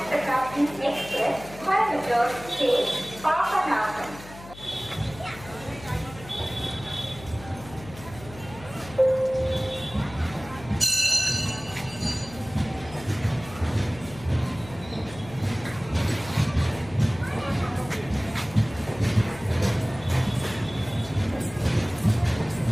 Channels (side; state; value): left; noise; hum, 17 dB below the sound